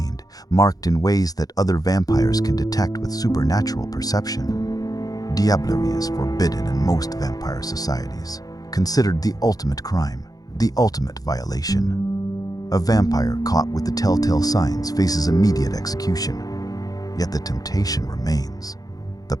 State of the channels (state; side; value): late; right; 0.18 ms